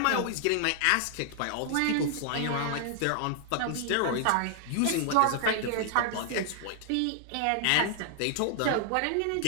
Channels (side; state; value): both; different; correlation 0.00